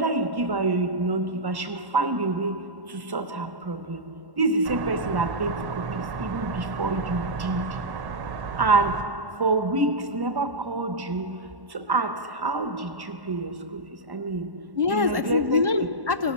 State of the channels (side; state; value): left; late; 1.1 ms